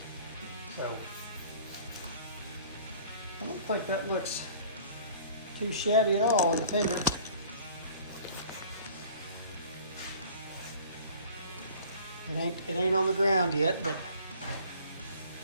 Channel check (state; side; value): inverted; both; correlation -0.49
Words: So, I don't think that looks too shabby at all in the fender. It ain't on the ground yet, but